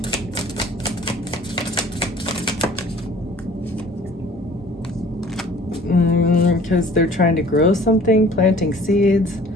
Because they're trying to grow something, planting seeds,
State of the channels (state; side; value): normal; both; correlation 0.50